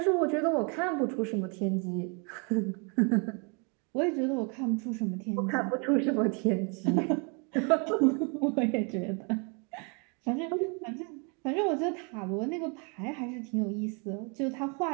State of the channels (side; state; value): left; quieter; 35.1 dB